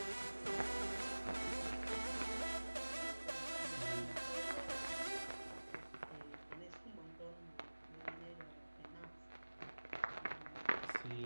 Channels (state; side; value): inverted; both; correlation -1.00